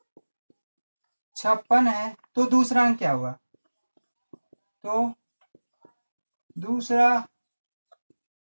56 है तो दूसरा अंक क्या होगा, तो दूसरा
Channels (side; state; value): both; inverted; correlation -1.00